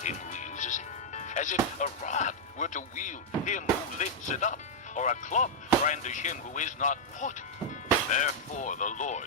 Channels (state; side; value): normal; both; correlation -0.05